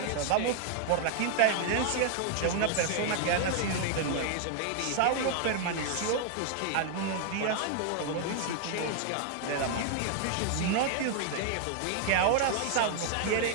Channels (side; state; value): both; different; correlation 0.00